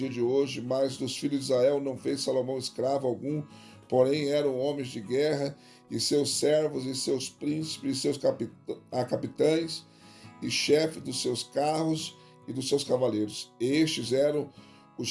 de hoje, mas dos filhos de Israel não fez Salomão escravo algum, porém eram homens de guerra, e seus servos, e seus príncipes, e seus capitães, e chefes dos seus carros e dos seus cavaleiros. Estes eram os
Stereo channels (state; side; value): identical; both; correlation 1.00